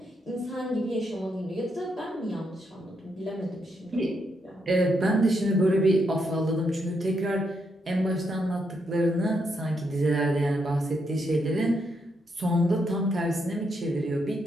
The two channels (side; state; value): both; normal; correlation 0.79